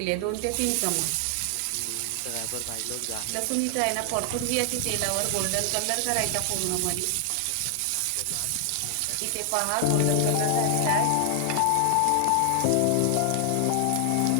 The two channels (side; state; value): both; different; correlation 0.00